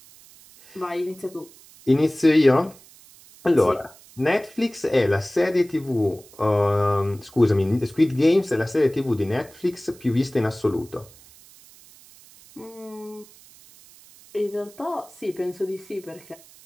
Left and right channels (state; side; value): noise; right; hiss, 24 dB below the sound